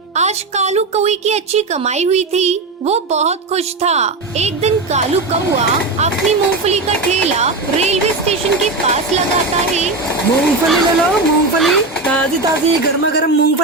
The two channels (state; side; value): quieter; left; 3.5 dB